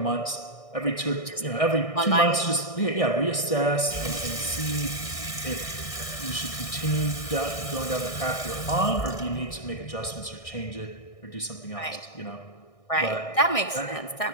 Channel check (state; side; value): late; right; 1.6 ms